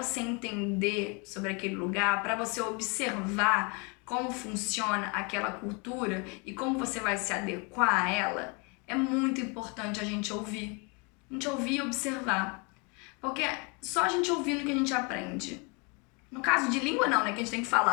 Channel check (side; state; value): right; quieter; 31.3 dB